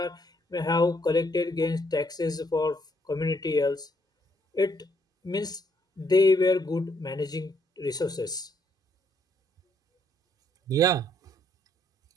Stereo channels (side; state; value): both; normal; correlation 0.71